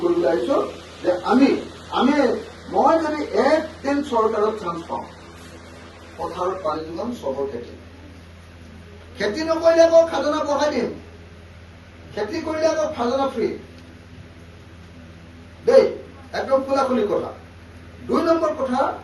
কৰিবলৈ আহিছো যে মই যদি একদিন চৰকাৰত চান্স পাওঁ, পথাৰত পানী যোগান, চবৰ খেতি নকৰিলে আকৌ খাজনা বঢ়াই দিম, খেতি কৰিলে আকৌ খাজনা ফ্ৰী দেই, একদম খোলাখুলি কথা। 2 নম্বৰ কথা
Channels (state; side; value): identical; both; correlation 1.00